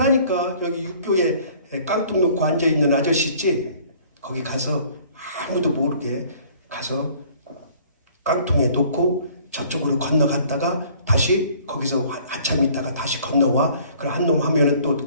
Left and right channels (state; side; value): inverted; both; correlation -0.55